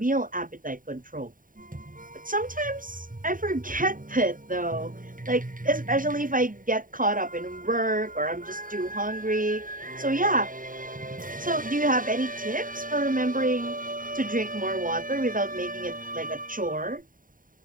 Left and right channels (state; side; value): late; left; 0.40 ms